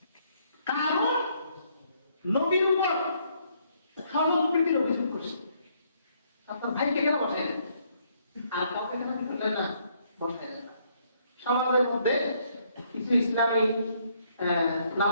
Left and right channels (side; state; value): both; inverted; correlation -0.69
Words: কারণ নবীর উপর সম্প্রীতির অভিযোগ করছে, আপনার ভাইকে কেন বসেন আর কাউকে কেন বললেন না, বসায় না। সমাজের মধ্যে কিছু ইসলামী